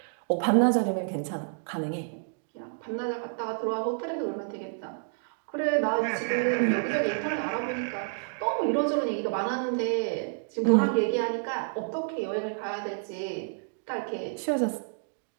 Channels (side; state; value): left; silent; digital silence